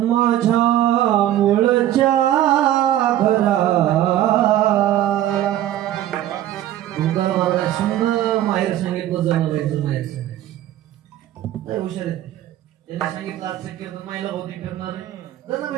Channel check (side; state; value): left; quieter; 12.8 dB